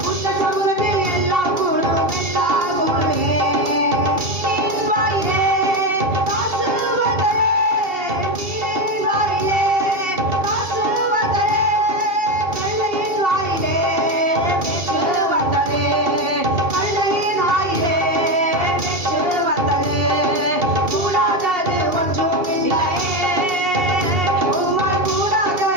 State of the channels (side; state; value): left; late; 2.7 ms